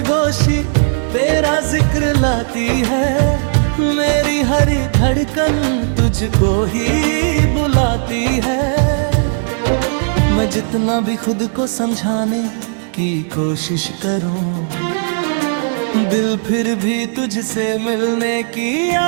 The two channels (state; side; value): silent; left; digital silence